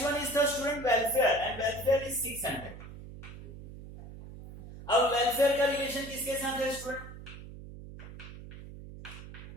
one is the student welfare, and welfare is 600। अब वेलफेयर का रिलेशन किसके साथ है स्टूडेंट,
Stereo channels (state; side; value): noise; right; hum, 14 dB below the sound